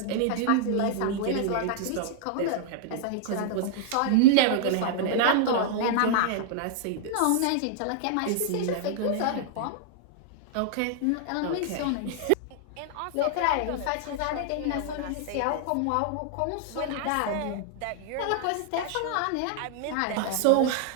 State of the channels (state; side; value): different; both; correlation -0.01